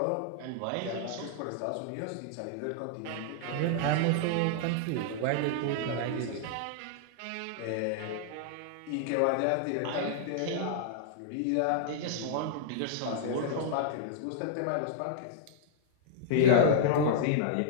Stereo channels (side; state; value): both; different; correlation -0.01